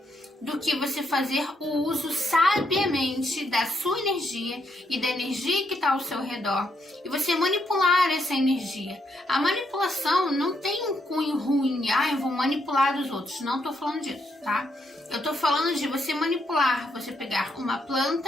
do que você fazer o uso sabiamente da sua energia e da energia que está ao seu redor e você manipular essa energia. A manipulação não tem um cunho ruim, eu vou manipular os outros, não estou falando disso, tá? Eu estou falando de você manipular, você pegar uma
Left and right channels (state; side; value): normal; both; correlation 0.77